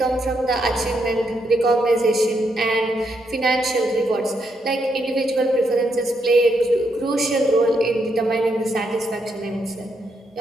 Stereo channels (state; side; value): normal; both; correlation 0.79